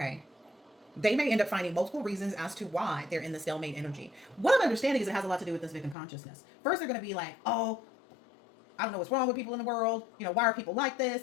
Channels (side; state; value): right; drops out; at 6.0 s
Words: They may end up finding multiple reasons as to why they're in the stalemate energy. What I'm understanding is it has a lot to do with this victim consciousness. First, they're going to be like, oh, I don't know what's wrong with people in the world. You know, why are people like